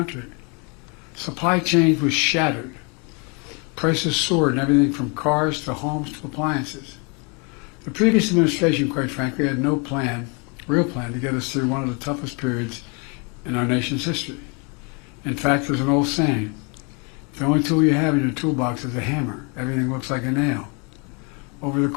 Supply chains was shattered. Prices soared in everything from cars to homes to appliances. The previous administration, quite frankly, had no plan, real plan, to get us through one of the toughest periods in our nation's history. In fact, there's an old saying, the only tool you have in your toolbox is a hammer. Everything looks like a nail. Over the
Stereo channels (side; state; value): right; quieter; 33.2 dB